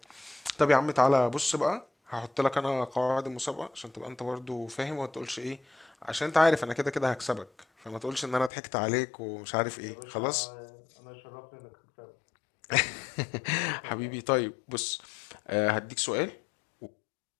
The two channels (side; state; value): right; drops out; at 8.5 s